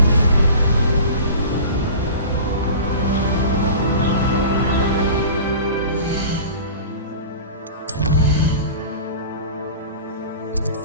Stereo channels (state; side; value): inverted; both; correlation -0.37